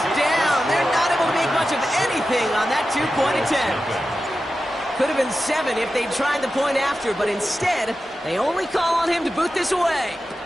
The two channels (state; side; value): normal; both; correlation 0.92